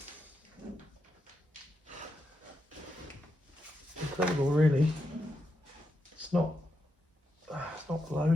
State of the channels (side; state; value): both; normal; correlation 0.85